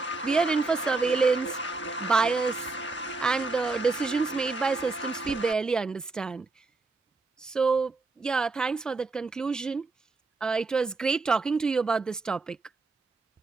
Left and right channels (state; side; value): quieter; left; 3.8 dB